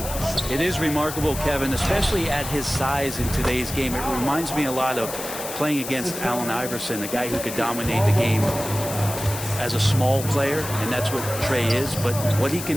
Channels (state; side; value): noise; left; hiss, 8 dB below the sound